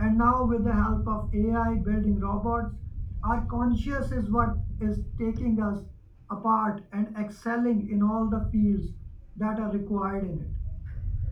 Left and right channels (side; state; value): both; identical; correlation 1.00